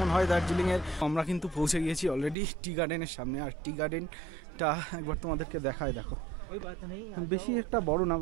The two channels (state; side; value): drops out; left; at 2.4 s